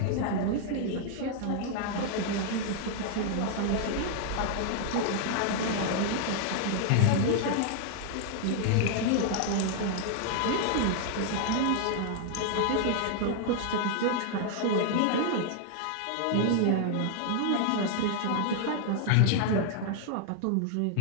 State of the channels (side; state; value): both; different; correlation 0.00